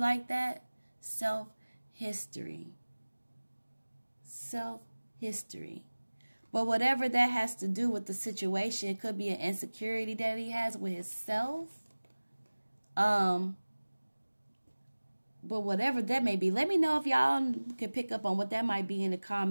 that. Self-history. Self-history. But whatever that has to do with the situation, it could be an insecurity that he has with himself. But whatever that may be, let me know if y'all can pick up on what that might be in the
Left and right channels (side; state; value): both; inverted; correlation -1.00